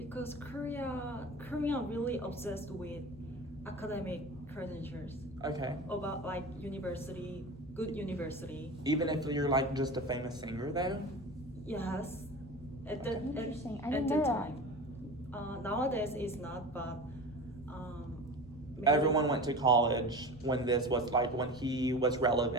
Korea really obsessed with academic credentials. Okay. About like good university. Even if you're like just a famous singer though? Yes. At the Interesting. I at didn't the know time. Nowadays it's not, but maybe- Everyone went to college when this was like when he was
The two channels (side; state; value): both; normal; correlation 0.32